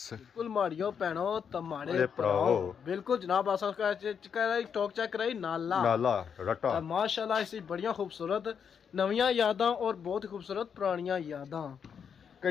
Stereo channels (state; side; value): quieter; right; 7.2 dB